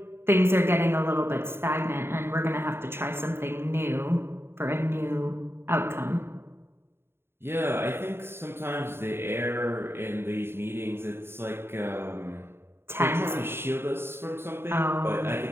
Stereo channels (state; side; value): late; left; 0.11 ms